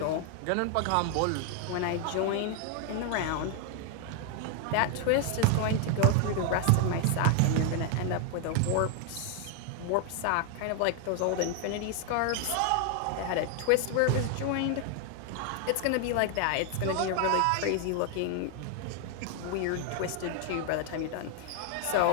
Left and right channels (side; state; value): both; different; correlation 0.00